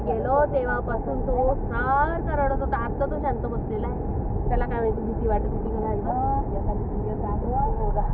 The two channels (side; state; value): both; identical; correlation 1.00